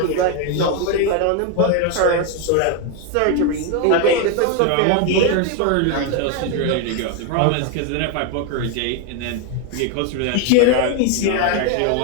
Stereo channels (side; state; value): both; different; correlation 0.01